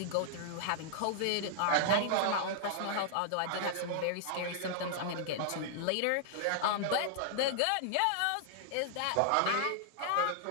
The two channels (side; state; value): both; different; correlation -0.01